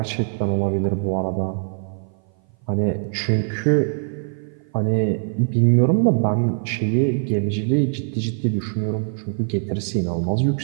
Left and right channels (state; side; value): silent; left; 56 dB below the other